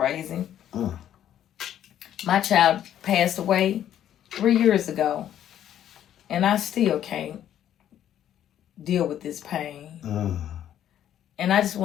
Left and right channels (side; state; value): right; quieter; 10.8 dB